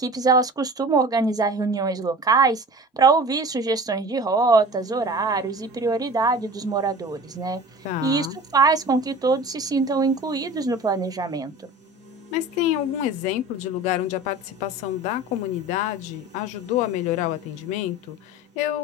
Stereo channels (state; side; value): normal; both; correlation 0.38